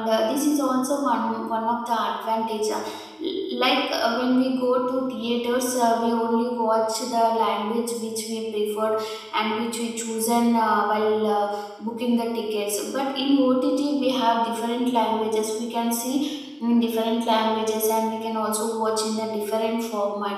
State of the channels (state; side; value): identical; both; correlation 1.00